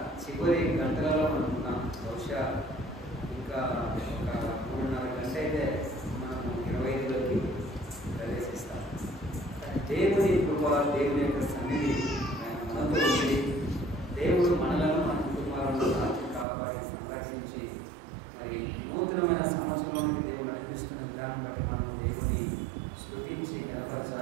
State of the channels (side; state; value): left; drops out; at 16.4 s